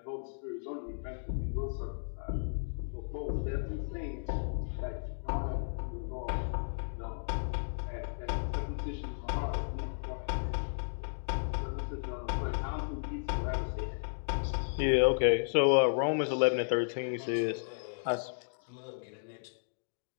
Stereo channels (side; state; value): right; silent; digital silence